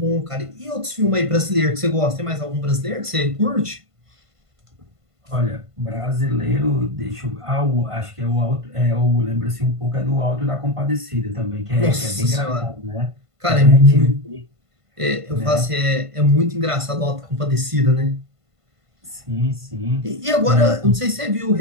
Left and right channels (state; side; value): late; left; 1.5 ms